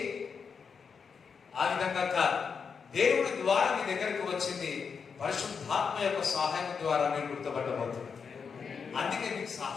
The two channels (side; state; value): right; quieter; 6.0 dB